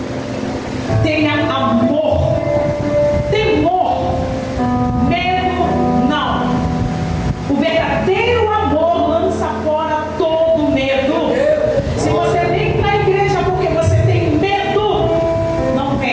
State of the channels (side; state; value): both; identical; correlation 1.00